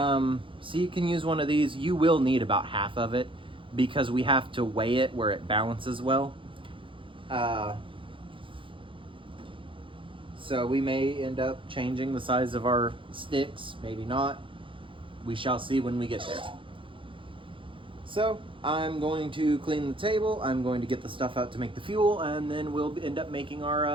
you can use one of these. You will need about half of it because we have to weigh it where it balances well. So we may end up changing the size of our sticks, maybe not. We shall see when we get there. So I'm going to clean the table, I'm going to get the stuff out to make the fuel, and then we'll end up making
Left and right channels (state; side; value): late; left; 0.25 ms